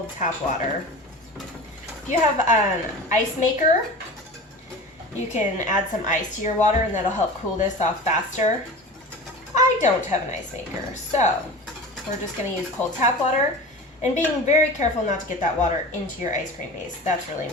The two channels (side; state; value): both; normal; correlation 0.34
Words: tap water. If you have an ice maker, you can add some ice to your water and that'll help cool this off faster. I don't have an ice maker, so we're just going to use cold tap water and being very careful not to get that water into your ice cream base. That's really